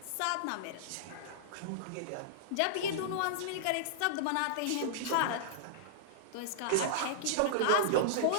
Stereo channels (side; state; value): both; different; correlation -0.02